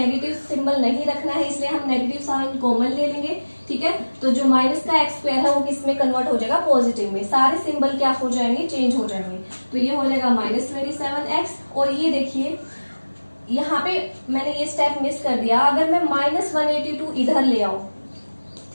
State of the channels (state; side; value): inverted; both; correlation -1.00